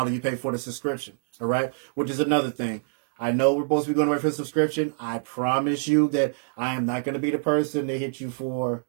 you pay for the subscription. All right. Which is another thing. I know we're supposed to be going away for a subscription. I promise you that I am not going to be the person to hit you for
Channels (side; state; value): left; silent; digital silence